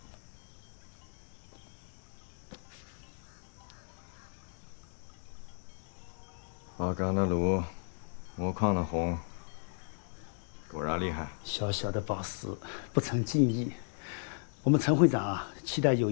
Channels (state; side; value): silent; right; 55 dB below the other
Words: 花岗的炉，木矿的红，果然厉害。小小的宝石，不成敬意。我们陈会长啊，期待有